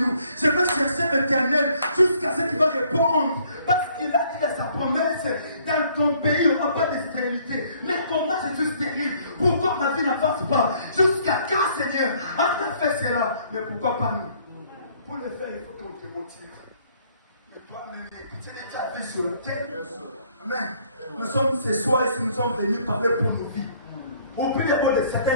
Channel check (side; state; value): both; inverted; correlation -0.62